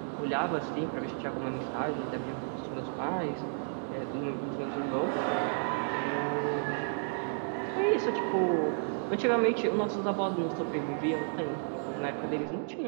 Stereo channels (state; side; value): silent; left; digital silence